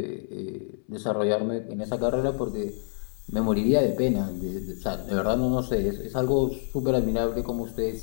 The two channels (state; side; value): silent; right; 60 dB below the other